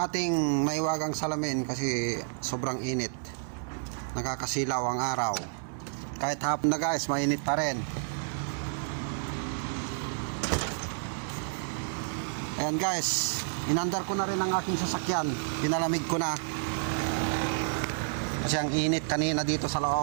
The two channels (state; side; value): silent; left; 58 dB below the other